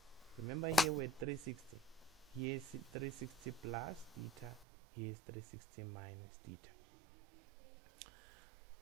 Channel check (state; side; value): drops out; left; at 4.7 s